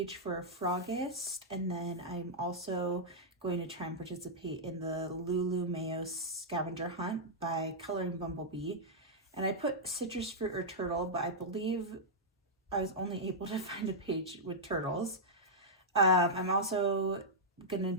for Frogist, and then I'm also going to try and participate in the Lulu Mayo scavenger hunt by Coloring Bumblebee. And I put citrus fruit or turtle, but I believe I was only able to find a page with turtles. I'm also gonna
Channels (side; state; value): both; normal; correlation -0.08